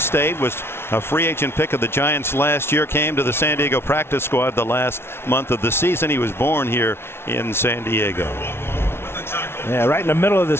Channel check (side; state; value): right; late; 0.12 ms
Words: was a free agent pick of the Giants last year, came to the San Diego practice squad the last month of the season. He was born here in San Diego. Yeah, right in the middle of the